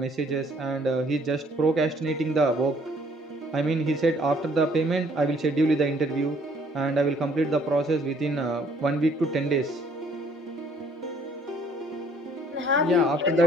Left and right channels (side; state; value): both; normal; correlation 0.61